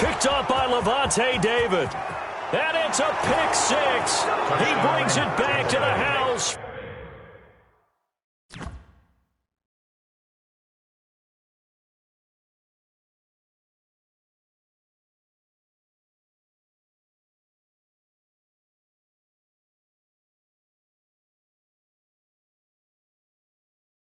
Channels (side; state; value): both; identical; correlation 1.00